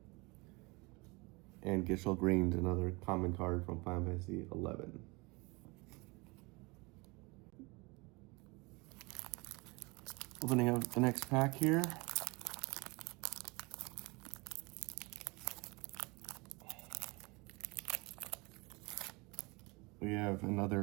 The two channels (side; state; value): left; quieter; 26.5 dB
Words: And Gishel Green's another common card from Final Fantasy 11. Opening up the next pack here. We have